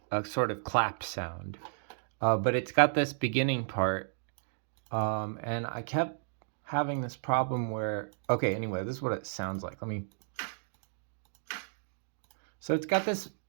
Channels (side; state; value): left; silent; digital silence